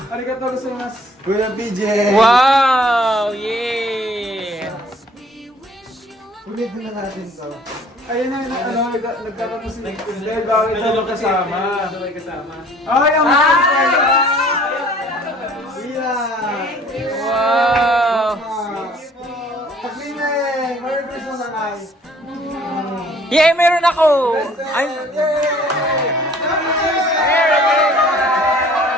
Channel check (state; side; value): normal; both; correlation 0.55